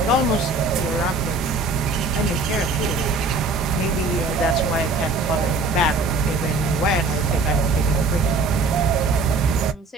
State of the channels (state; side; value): quieter; left; 3.5 dB